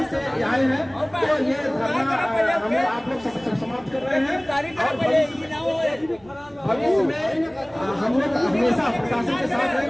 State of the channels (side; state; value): right; noise; rumble, 29 dB below the sound